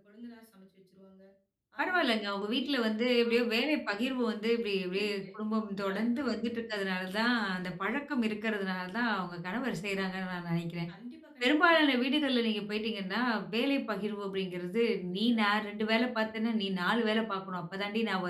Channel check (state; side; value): identical; both; correlation 1.00